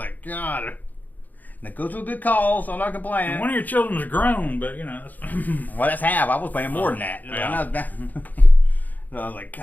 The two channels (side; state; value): right; late; 0.083 ms